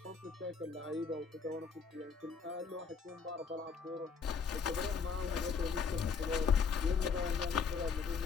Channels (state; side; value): quieter; right; 5.6 dB